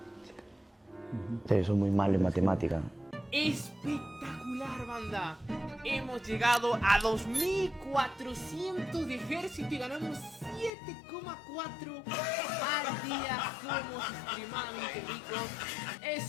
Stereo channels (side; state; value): right; drops out; at 10.7 s